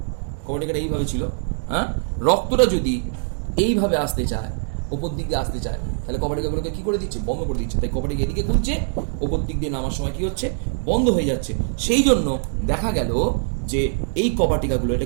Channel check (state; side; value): silent; left; digital silence